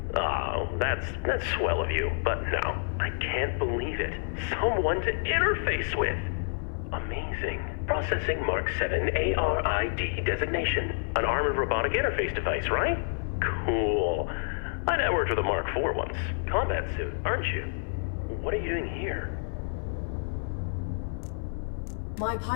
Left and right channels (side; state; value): right; silent; 56 dB below the other